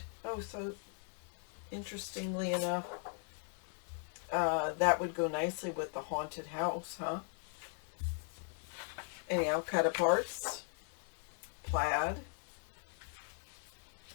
Oh, so interestingly enough, that would go nicely with the haunted house, huh? Anyhow, cut aparts. Plaid.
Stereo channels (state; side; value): silent; right; 52 dB below the other